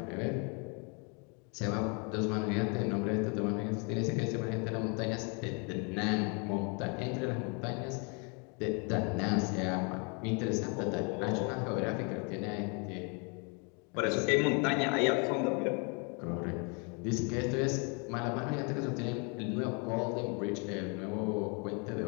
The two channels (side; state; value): right; quieter; 34.6 dB